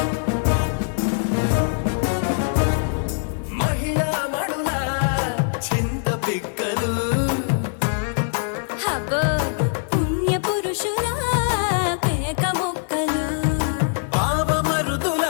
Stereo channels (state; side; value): silent; right; 57 dB below the other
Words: మహిళా మడుల చింత పిక్కలు హబో పుణ్య పురుషుల పేక మొక్కలు పావమరుదుల